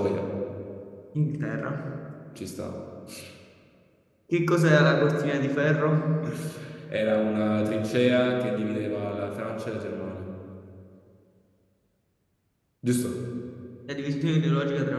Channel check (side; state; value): both; identical; correlation 1.00